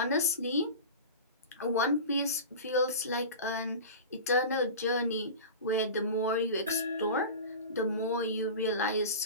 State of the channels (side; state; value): both; inverted; correlation -0.31